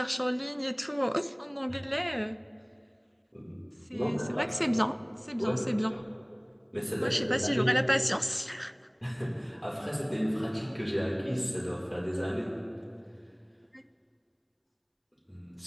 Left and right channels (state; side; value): identical; both; correlation 1.00